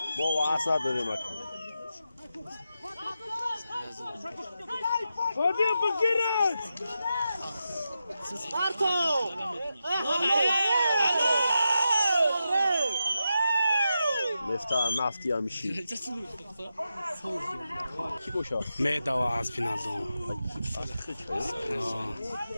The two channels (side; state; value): both; inverted; correlation -0.89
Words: بابا اصلا داریم خودی بگیرد سپارتو مفتاح نفتی هم میشی کی بوشا معده و عصب ندارم